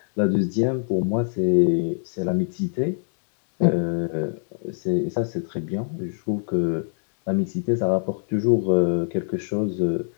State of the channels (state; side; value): silent; right; digital silence